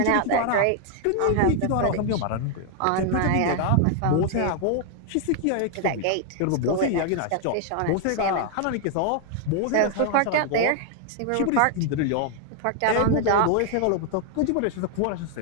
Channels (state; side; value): different; both; correlation 0.00